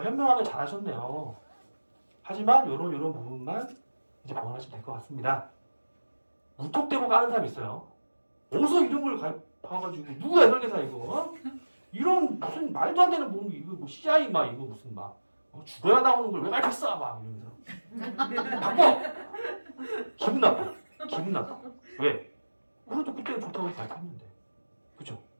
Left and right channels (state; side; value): inverted; both; correlation -1.00